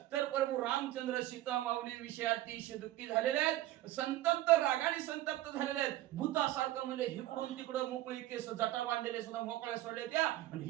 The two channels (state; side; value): quieter; left; 15.3 dB